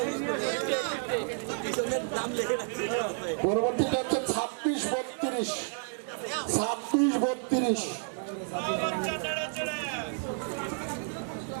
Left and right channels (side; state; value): left; silent; 57 dB below the other